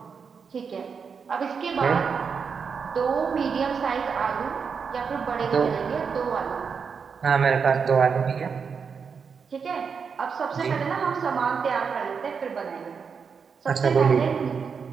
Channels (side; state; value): left; quieter; 6.0 dB